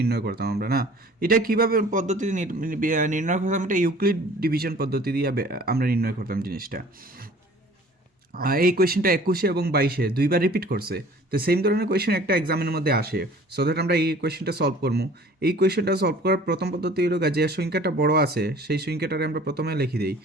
করতাম আমরা না। এটা কীভাবে পদ্ধতি নির্ণয় করতাম, এটা ইউক্লিড ডিভিশন পদ্ধতি দিয়ে আমরা নির্ণয় করতাম জিনিসটা। এই কোয়েশ্চেনটা 21 এবং 22-এ দুইবার রিপিট করছে, তো সেম ধরনের কোয়েশ্চেন একটা এক্সামের মধ্যে আসে। সো দ্যাট আমরা এই কোয়েশ্চেনটা সলভ করবো। এই কোয়েশ্চেনটা সলভ করার প্রথম পদ্ধতি হলো যে সংখ্যাটা বড় আছে সেই সংখ্যাটারে আমরা প্রথমে লিখে দিই।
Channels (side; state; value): both; normal; correlation 0.49